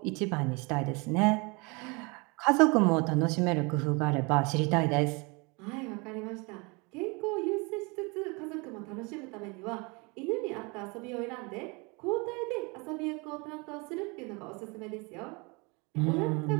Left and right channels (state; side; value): quieter; left; 28.9 dB